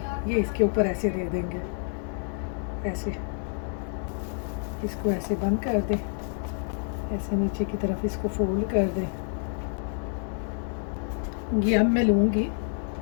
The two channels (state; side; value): silent; right; 59 dB below the other